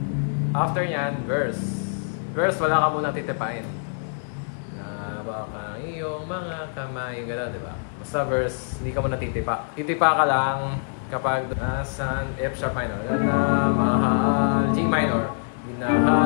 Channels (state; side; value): silent; right; digital silence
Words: After nyan, verse. Verse, wala ka muna titipain. Na baka iyong mga kamay, gano'n, di ba? Basta verse, hindi ka muna titipa. Titipa ka lang kapag nasan F sharp minor. Na mahal, G minor.